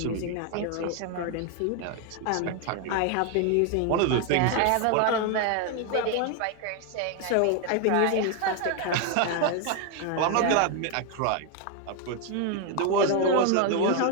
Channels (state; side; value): different; both; correlation 0.01